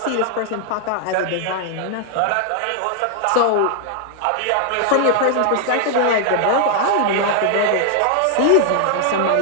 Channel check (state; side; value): different; both; correlation 0.00